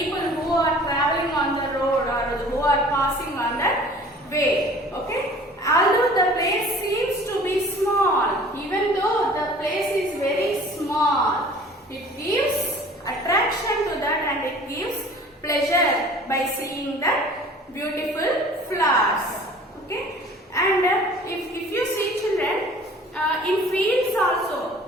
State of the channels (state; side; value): normal; both; correlation 0.48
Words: who are traveling on the road or who are passing on that way, okay. Although the place seems to be small, even though the place is very small, it gives attraction to that and it gives pleasure by seeing that beautiful flowers, okay. And if you see children, in fields